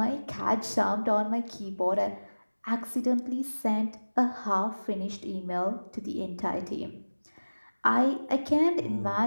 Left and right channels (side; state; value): both; inverted; correlation -1.00